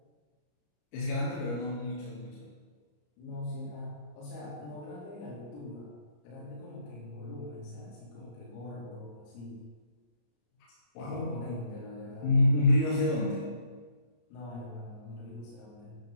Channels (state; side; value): late; right; 34 ms